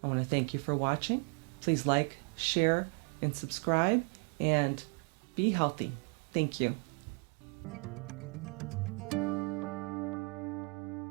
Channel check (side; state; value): left; quieter; 33.6 dB